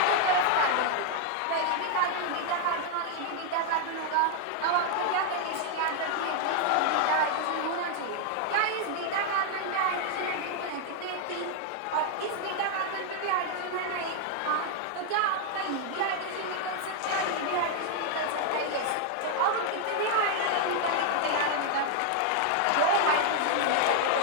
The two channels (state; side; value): different; both; correlation 0.00